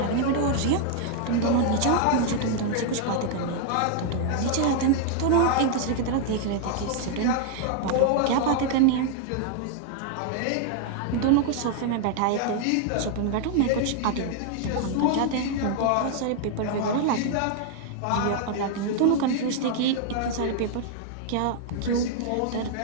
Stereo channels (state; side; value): different; both; correlation 0.00